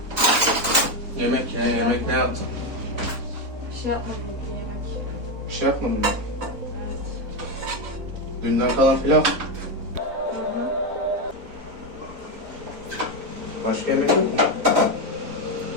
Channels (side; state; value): left; late; 4.0 ms